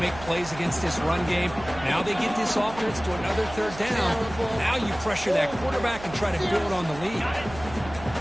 plays against this run game. Now they get this offense to another 3rd down. Now you pressure that quarterback and try to build on the lead.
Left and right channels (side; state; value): right; noise; hum, 14 dB below the sound